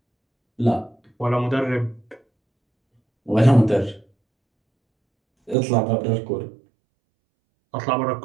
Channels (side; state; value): left; drops out; at 5.6 s